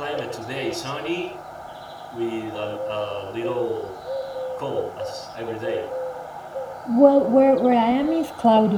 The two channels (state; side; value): identical; both; correlation 1.00